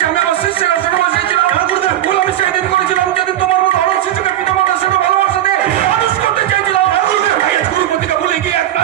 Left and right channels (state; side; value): quieter; left; 12.5 dB